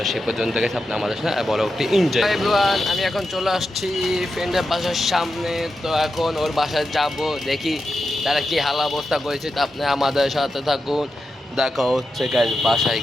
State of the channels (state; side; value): normal; both; correlation 0.89